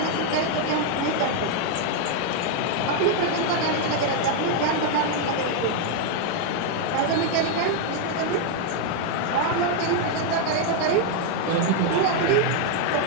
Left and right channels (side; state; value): both; different; correlation 0.00